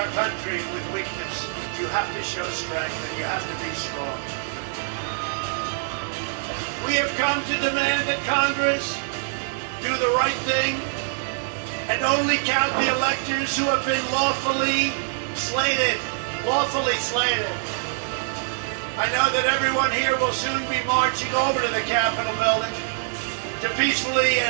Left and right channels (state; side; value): silent; left; digital silence